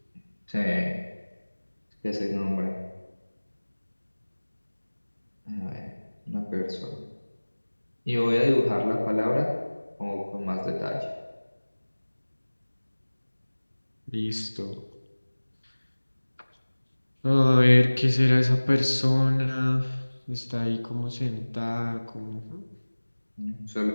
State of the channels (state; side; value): inverted; both; correlation -1.00